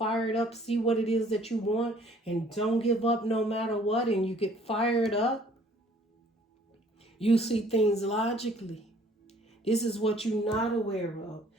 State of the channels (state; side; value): normal; both; correlation 0.57